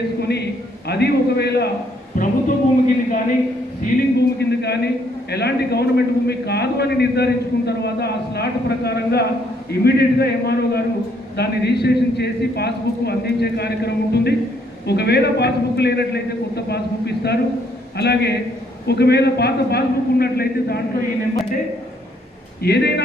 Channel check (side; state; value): both; normal; correlation 0.69